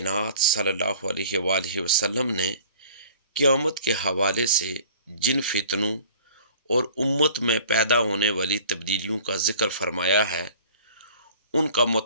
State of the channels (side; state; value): both; inverted; correlation -0.48